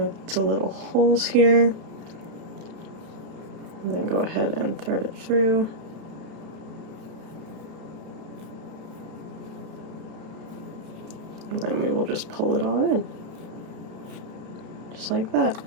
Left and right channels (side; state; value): left; late; 31 ms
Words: the little holes here. And then go ahead and thread it through. And then we will just pull it all in. Just like that.